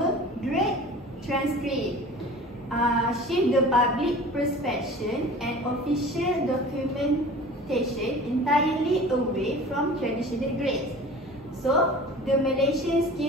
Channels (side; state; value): both; normal; correlation 0.41